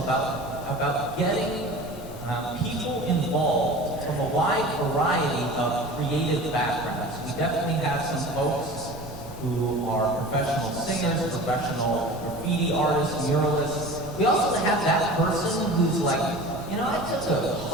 about getting people involved from a wide variety of creative backgrounds. We definitely have some folks who are professional singers, professional graffiti artists, muralists. We also have that person who's like, you know, I took a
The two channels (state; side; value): normal; both; correlation 0.38